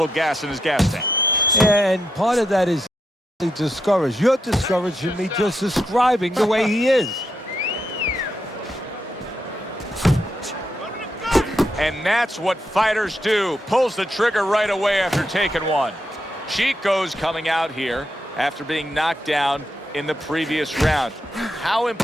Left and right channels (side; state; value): both; normal; correlation 0.82